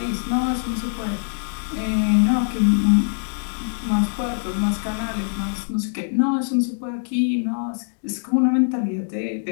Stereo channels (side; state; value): right; silent; digital silence